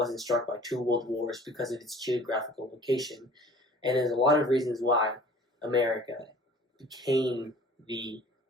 struck by two world wars because of its geographical location. And there's a lot of reasons why America became the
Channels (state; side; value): normal; both; correlation 0.48